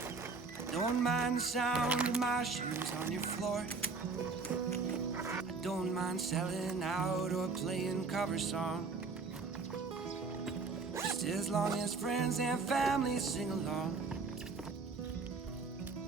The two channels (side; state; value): left; quieter; 4.4 dB